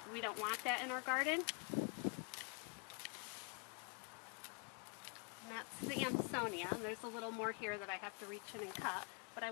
we don't want that in our garden. And that's the Amsonia. And there's a little more here that I have to reach in and cut, but I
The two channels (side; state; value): right; quieter; 36.6 dB